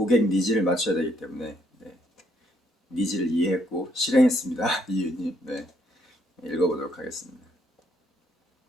니즈를 맞춰야 되기 때문에 니즈를 이해했고 실행했습니다. 이유님. 네. 읽어보도록 하겠습니다.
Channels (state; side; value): normal; both; correlation 0.70